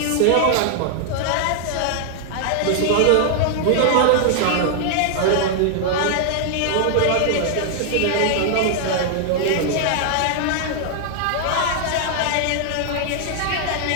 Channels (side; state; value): both; different; correlation -0.01